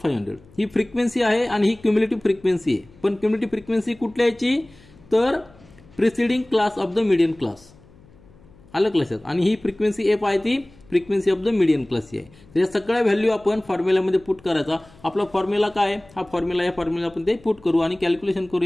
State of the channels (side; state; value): left; noise; hum, 26 dB below the sound